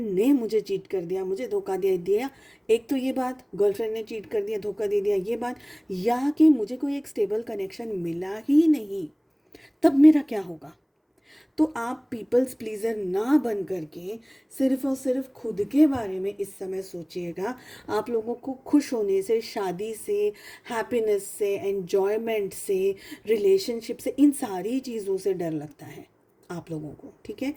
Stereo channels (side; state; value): both; identical; correlation 1.00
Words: ने मुझे चीट कर दिया, मुझे धोखा दे दिया, एक तो ये बात, गर्लफ्रेंड ने चीट कर दिया, धोखा दे दिया, ये बात, या कि मुझे कोई एक स्टेबल कनेक्शन मिला ही नहीं, तब मेरा क्या होगा। तो आप पीपल्स प्लीज़र ना बन करके सिर्फ और सिर्फ खुद के बारे में इस समय सोचिएगा। आप लोगों को खुश होने से, शादी से, हैप्पीनेस से, एन्जॉयमेंट से, रिलेशनशिप से, इन सारी चीज़ों से डर लगता है आप लोगों को, ठीक है।